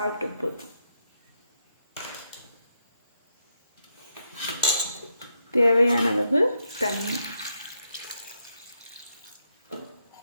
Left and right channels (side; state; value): both; inverted; correlation -0.81